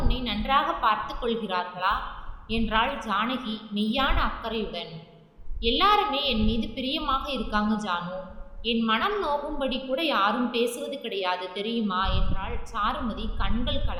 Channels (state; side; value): identical; both; correlation 1.00